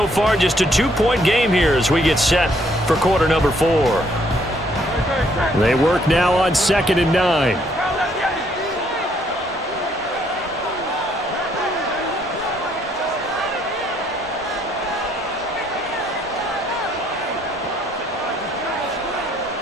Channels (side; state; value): both; normal; correlation 0.68